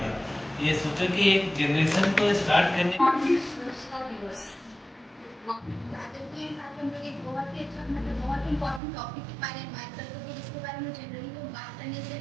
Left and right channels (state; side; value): drops out; left; at 8.8 s